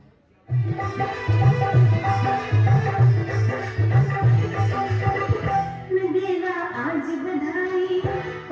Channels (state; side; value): identical; both; correlation 1.00